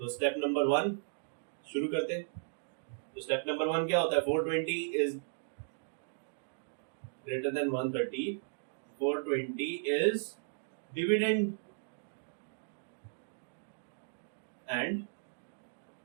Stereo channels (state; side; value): silent; left; digital silence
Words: step number 1 शुरू करते हैं। तो स्टेप नंबर 1 क्या होता है, 420 is greater than 130, 420 is dividend and